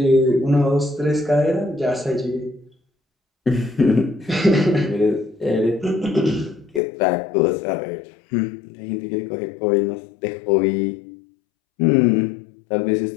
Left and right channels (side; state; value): right; drops out; at 6.8 s